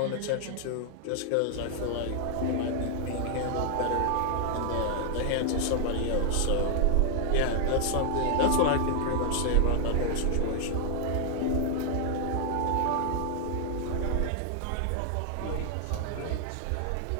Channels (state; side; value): different; both; correlation 0.00